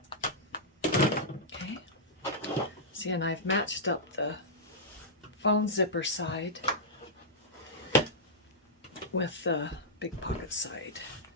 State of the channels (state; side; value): normal; both; correlation -0.11